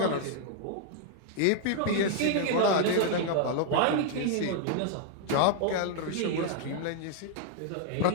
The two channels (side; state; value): both; different; correlation 0.00